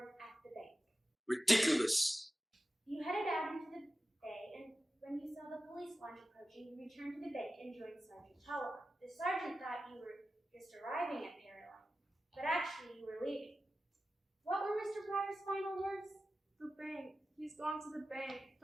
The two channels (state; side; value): normal; both; correlation 0.94